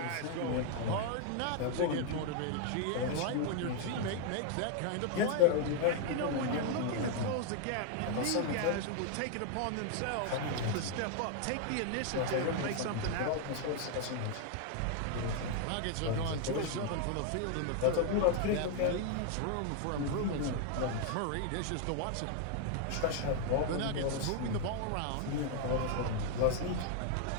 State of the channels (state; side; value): different; both; correlation 0.00